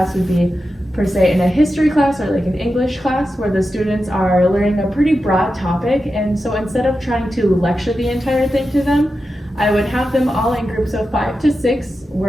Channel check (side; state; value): both; normal; correlation 0.91